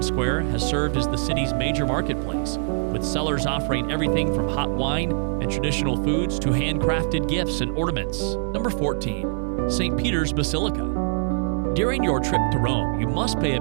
Square has served as the city's major marketplace, with sellers offering everything from hot wine and traditional foods to handcrafted gifts and ornaments. Number 14. St. Peter's Basilica. During your trip to Rome, you must pay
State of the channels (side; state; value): left; silent; digital silence